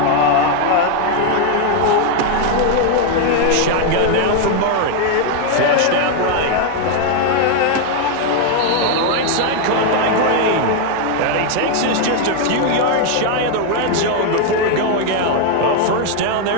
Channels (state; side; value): different; both; correlation 0.01